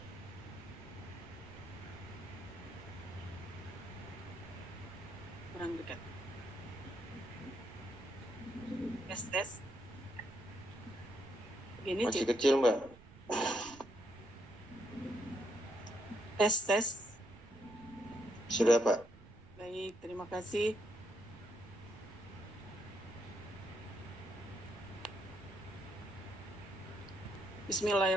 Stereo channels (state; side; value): noise; right; rumble, 19 dB below the sound